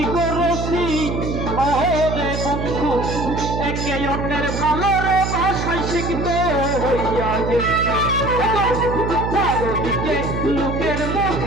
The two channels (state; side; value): noise; right; hum, 3 dB below the sound